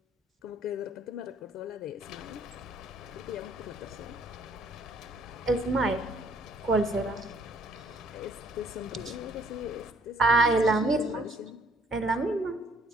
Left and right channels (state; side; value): normal; both; correlation 0.62